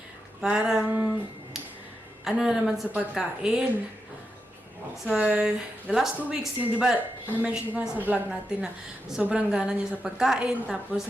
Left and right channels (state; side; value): normal; both; correlation 0.87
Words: parang, na naman sa pagkain. So, the last 2 weeks, yun, di ba, na-mention ko na sa vlog natin na sobrang gana niya sa pagkain.